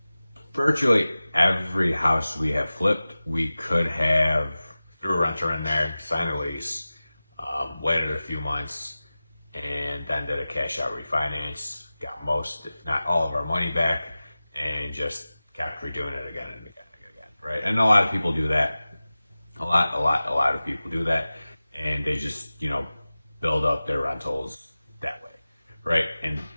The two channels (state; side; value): inverted; both; correlation -0.97